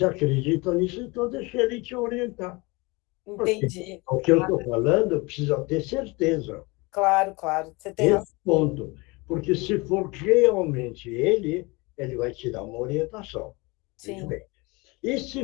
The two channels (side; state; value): right; quieter; 25.5 dB